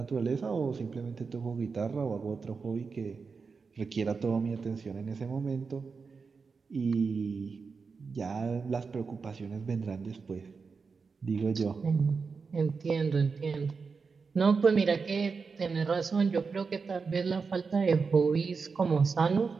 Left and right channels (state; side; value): quieter; left; 5.0 dB